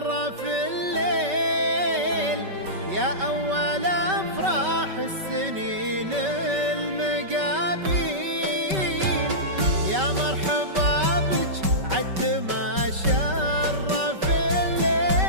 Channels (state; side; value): late; left; 5.2 ms